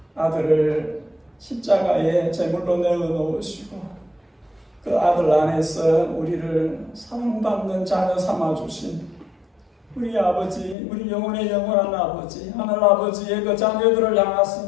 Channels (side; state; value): right; drops out; at 10.8 s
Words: 아들을 십자가에 제물로 내어놓으시고 그 아들 안에서 우리를 사랑받는 자녀 삼아주신 우리 아버지, 우리 영혼의 영원한 아버지, 하늘 아버지의 그 자녀들을